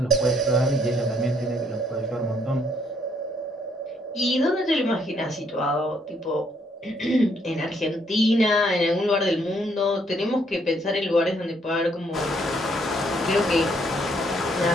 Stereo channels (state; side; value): normal; both; correlation 0.69